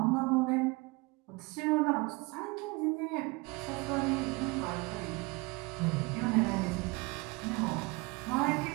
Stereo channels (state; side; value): quieter; left; 26.1 dB